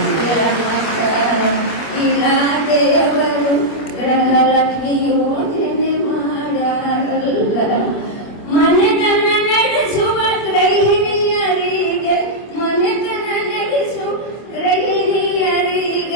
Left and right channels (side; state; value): right; late; 25 ms